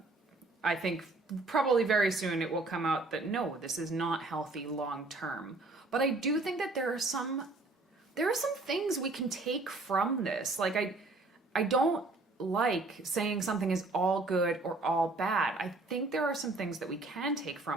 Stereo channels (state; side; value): quieter; left; 3.2 dB